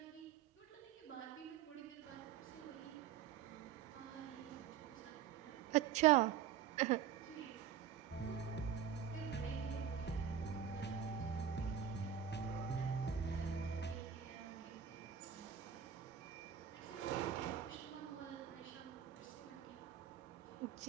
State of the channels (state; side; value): quieter; left; 8.8 dB